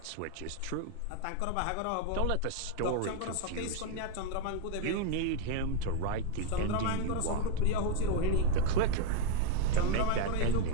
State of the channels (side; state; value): both; different; correlation 0.01